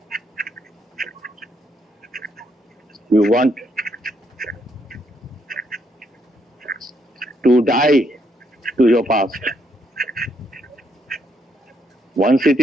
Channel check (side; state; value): both; normal; correlation 0.74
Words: You want to die to your past. Once it